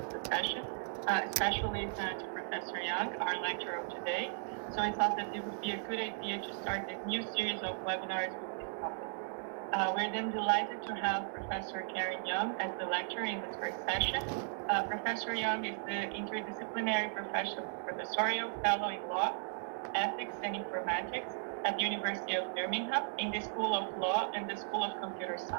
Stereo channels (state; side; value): silent; left; digital silence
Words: the session, especially to Professor Young, our lecturer of today. So I thought that it would be a good idea to start this new series of webinars with this topic. We're then delighted to have Professor Karen Young as the lecturer in this first session. Professor Young is the interdisciplinary professorial fellow in law, ethics, and informatics at the University of Birmingham in the School of Law and the School of Computer